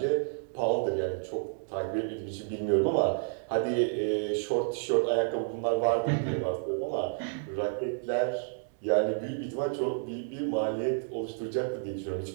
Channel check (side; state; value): left; silent; digital silence